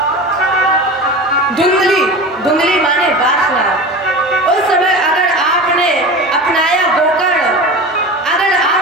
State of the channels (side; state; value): both; normal; correlation 0.31